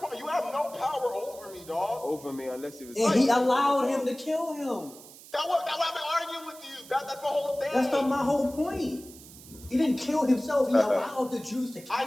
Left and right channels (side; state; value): right; noise; hiss, 19 dB below the sound